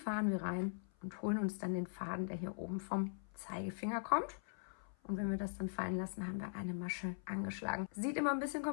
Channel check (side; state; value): right; silent; 50 dB below the other